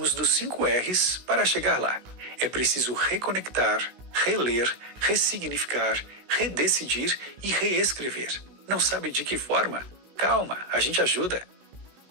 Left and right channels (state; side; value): late; left; 16 ms